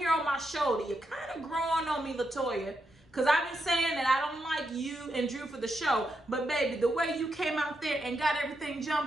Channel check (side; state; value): both; normal; correlation 0.83